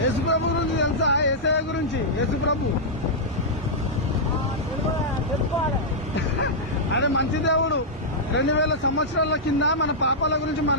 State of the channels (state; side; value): normal; both; correlation -0.09